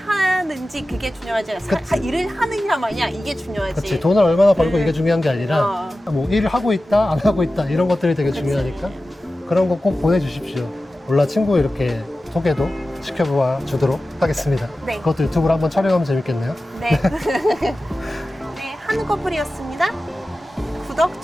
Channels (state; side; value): normal; both; correlation 0.95